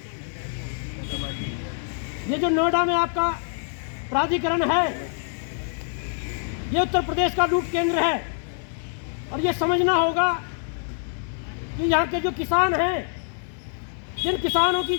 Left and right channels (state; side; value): silent; right; digital silence